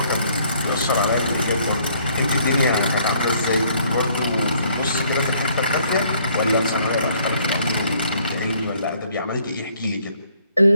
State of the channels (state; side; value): inverted; both; correlation -0.64